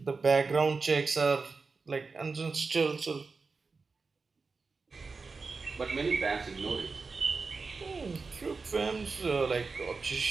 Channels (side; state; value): left; quieter; 4.4 dB